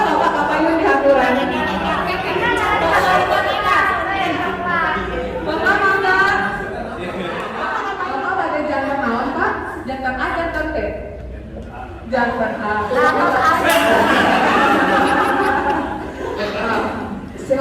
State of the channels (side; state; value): both; identical; correlation 1.00